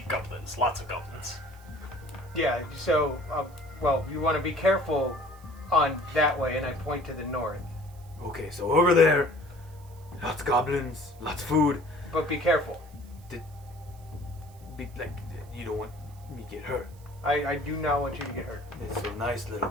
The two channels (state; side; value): noise; right; hiss, 27 dB below the sound